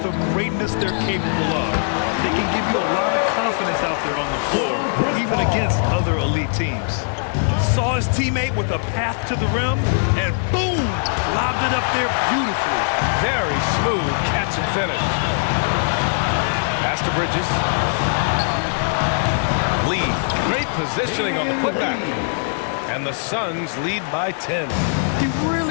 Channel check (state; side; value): silent; right; digital silence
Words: the greatness they're capable of. They can give you a lot of confidence out there on the floor, even against other elite teams. Saw his teammate with a path to the rim, and boom, lobbed it up there beautifully. Very smooth catch and finish. Pass to Bridges. Lead. Great positioning on the putback. And the Suns lead by 10. He